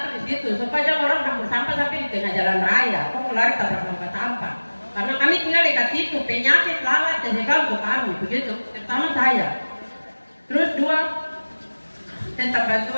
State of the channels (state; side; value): inverted; both; correlation -1.00